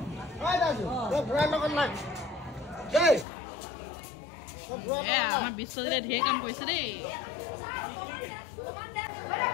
আমাৰ বিশ্বজিতে ঢেৰ কাম কৰিছে দেই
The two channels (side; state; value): right; drops out; at 3.2 s